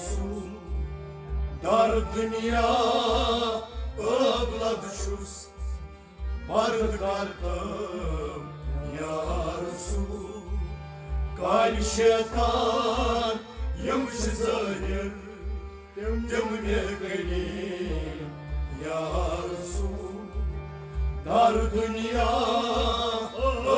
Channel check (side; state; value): both; identical; correlation 1.00